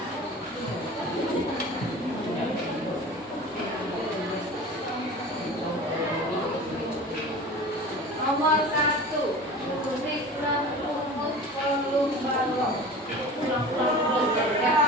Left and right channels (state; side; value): normal; both; correlation 0.37